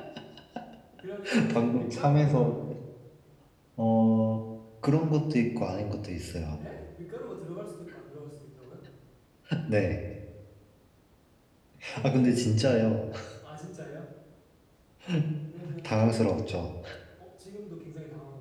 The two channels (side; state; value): both; identical; correlation 1.00